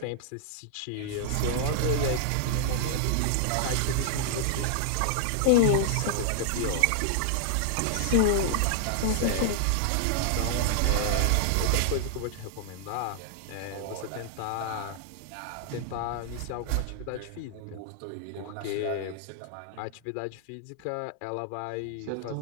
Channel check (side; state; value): both; different; correlation -0.01